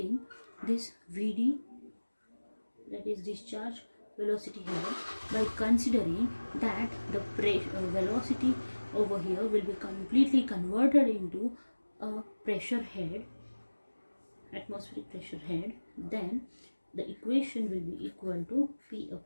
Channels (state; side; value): inverted; both; correlation -1.00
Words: this Vd, that is discharge velocity head, by considering that the velocity over here will be completely converted into a pressure head, atmospheric pressure head, then the equation will be equal to P